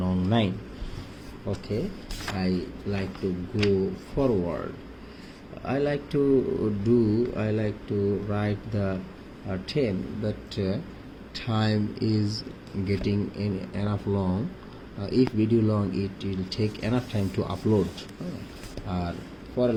নং 9. Okay, I like to go forward. I like to write the 10, but time is getting enough long. If video long, it will take enough time to upload. For a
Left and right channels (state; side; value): identical; both; correlation 1.00